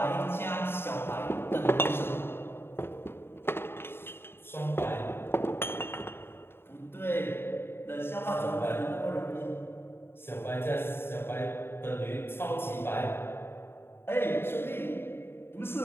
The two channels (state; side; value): late; right; 0.11 ms